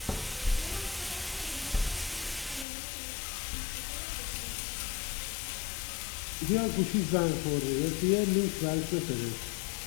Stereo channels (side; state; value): right; drops out; at 2.7 s